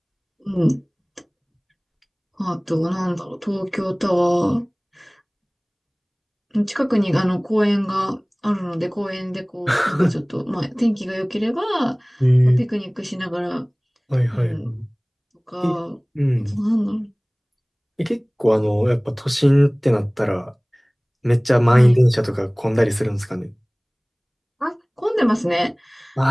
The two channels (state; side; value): identical; both; correlation 1.00